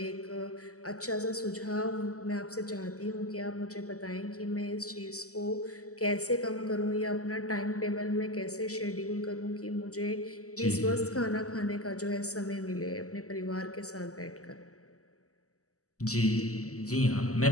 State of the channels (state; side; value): late; right; 0.66 ms